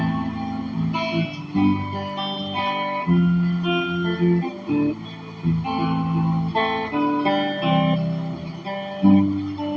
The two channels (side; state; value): both; identical; correlation 1.00